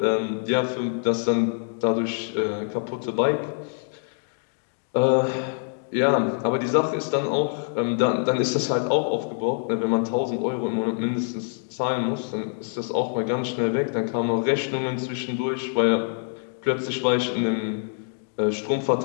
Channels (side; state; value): right; silent; digital silence